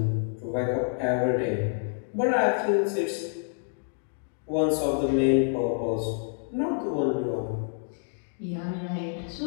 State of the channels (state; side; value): silent; right; digital silence